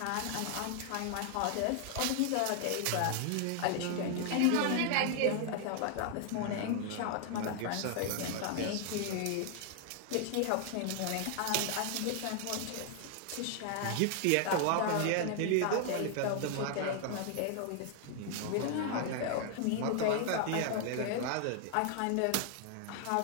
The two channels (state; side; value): different; both; correlation 0.00